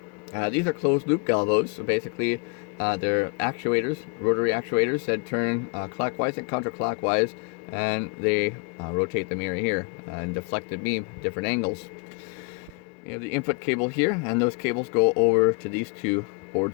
These are closed loop galvos, so basically they're actuators, rotary actuators that turn clockwise and counterclockwise, and they rotate the mirror here and deflect the beam at different angles. You have the input cable here, and those cables go over to these two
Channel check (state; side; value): quieter; right; 34.3 dB